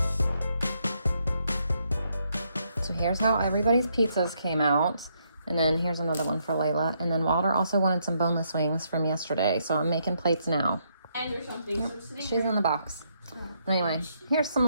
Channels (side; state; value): both; inverted; correlation -0.75